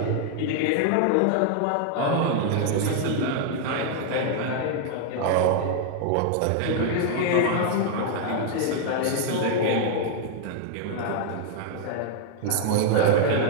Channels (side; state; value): both; different; correlation 0.00